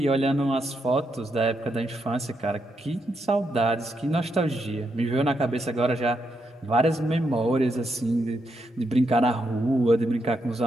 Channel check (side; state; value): both; normal; correlation 0.81